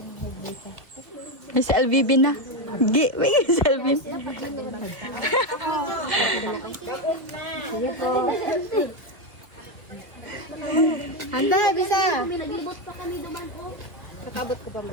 May si LVB na. May si LVB. Handa, bisa.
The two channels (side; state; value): left; late; 2.4 ms